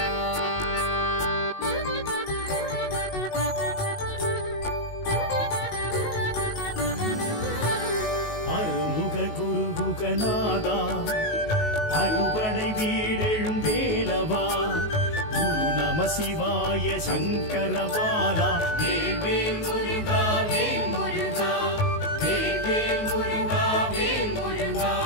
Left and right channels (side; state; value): right; late; 19 ms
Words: குருகுகநாதா அறுபடை வீடெழும் வேலவா குரு நம சிவாய சங்கரபாலா வேல் முருகா வேல் முருகா வேல் முருகா வேல் முருகா